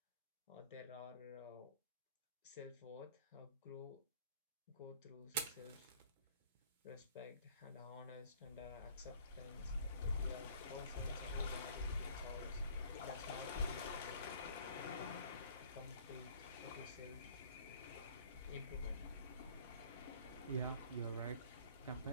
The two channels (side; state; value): both; inverted; correlation -0.52